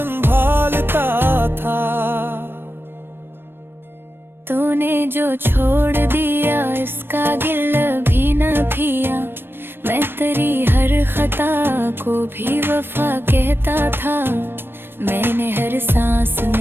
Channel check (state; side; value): late; left; 0.10 ms